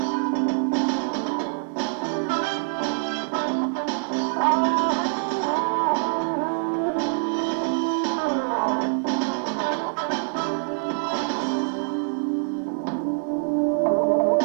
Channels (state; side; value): silent; left; 62 dB below the other